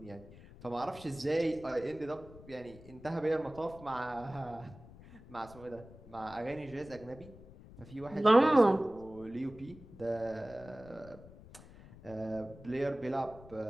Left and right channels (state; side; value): noise; left; rumble, 19 dB below the sound